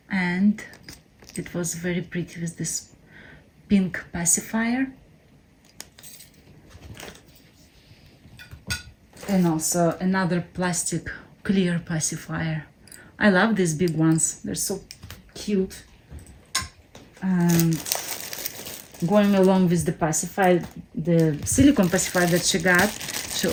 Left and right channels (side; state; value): both; identical; correlation 1.00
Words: and it was very pretty with this pink pacifier. And also another plastic clear pacifier. I love these big ones. They're so cute. And going along with the pacifier, the silicone pacifier that she got, she